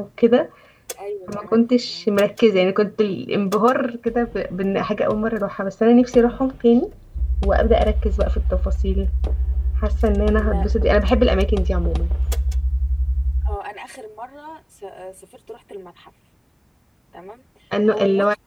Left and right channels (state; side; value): identical; both; correlation 1.00